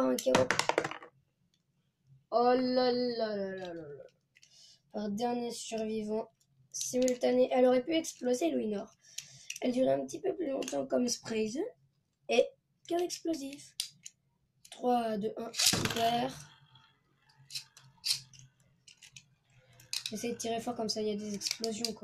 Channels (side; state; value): both; identical; correlation 1.00